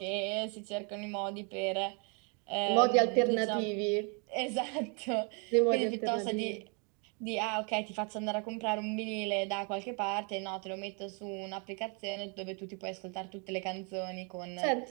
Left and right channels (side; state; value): left; quieter; 35.7 dB